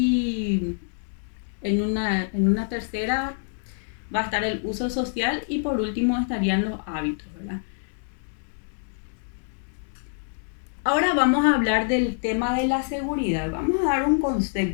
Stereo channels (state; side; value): silent; right; digital silence